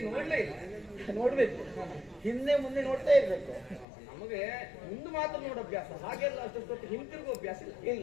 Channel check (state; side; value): drops out; right; at 3.9 s